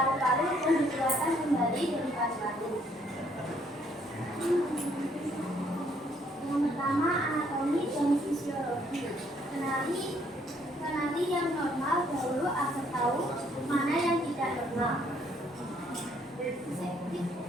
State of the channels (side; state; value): both; normal; correlation 0.67